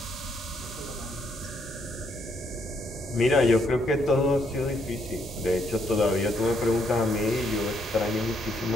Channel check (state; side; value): normal; both; correlation 0.73